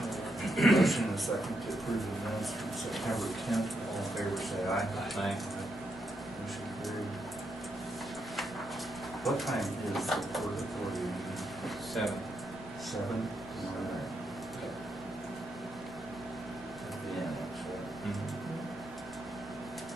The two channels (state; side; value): normal; both; correlation 0.81